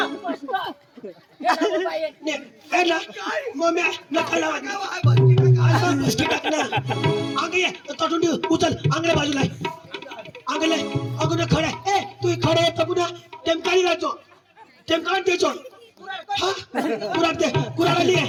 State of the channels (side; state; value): both; identical; correlation 1.00